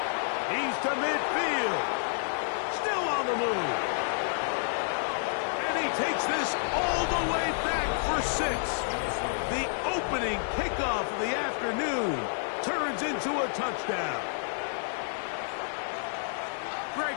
He's to midfield. Still on the move. And he takes this all the way back for 6. The opening kickoff of the afternoon turns into a touchdown.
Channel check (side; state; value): right; silent; 55 dB below the other